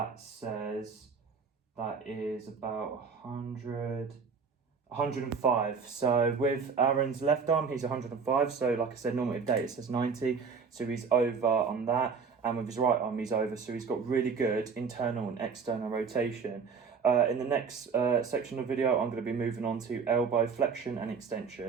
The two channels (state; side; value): quieter; left; 5.6 dB